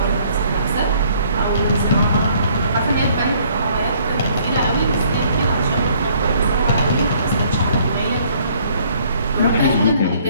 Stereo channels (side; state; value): both; inverted; correlation -0.62